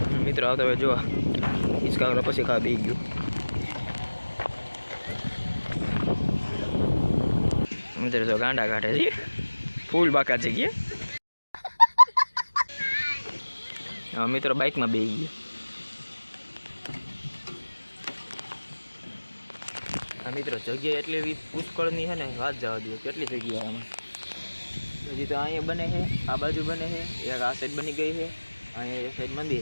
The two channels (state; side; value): inverted; both; correlation -1.00